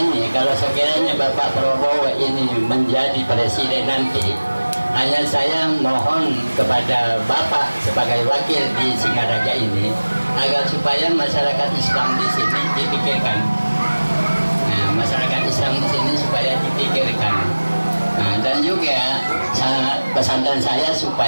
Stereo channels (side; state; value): both; inverted; correlation -1.00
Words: kalau sekiranya Bapak Prabowo ini menjadi presiden nanti, hanya saya mohon kepada Bapak sebagai wakil di Singaraja ini agar supaya masyarakat Islam di sini dipikirkan. Nah, masyarakat Islam di sini supaya dipikirkan. Nah, dan juga pesantren saya